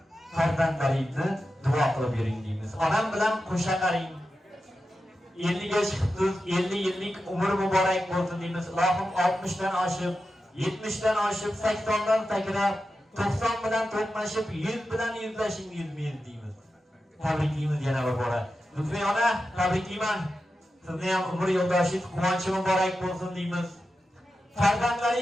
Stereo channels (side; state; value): both; normal; correlation 0.91